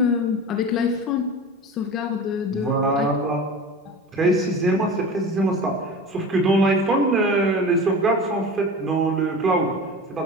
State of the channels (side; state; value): both; normal; correlation 0.33